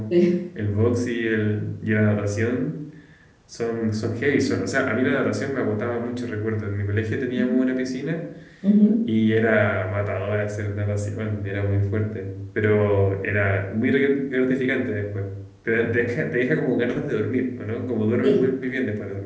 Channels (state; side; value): identical; both; correlation 1.00